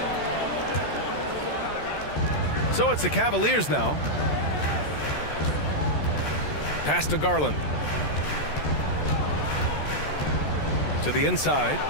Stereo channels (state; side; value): late; right; 14 ms